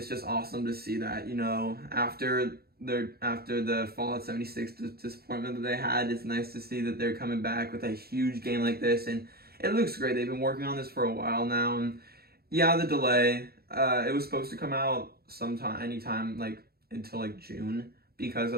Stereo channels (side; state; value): left; late; 0.45 ms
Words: just awesome to see that. You know, after the Fallout 76 disappointment that they had, it's nice to see that they're coming back with a huge game like this, and it looks great. They've been working on this for a while now, and yeah, the delay. It was supposed to come out anytime like until like June, because